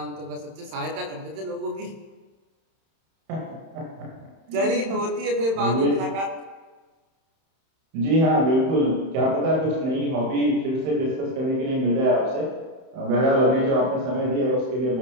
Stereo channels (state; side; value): late; left; 31 ms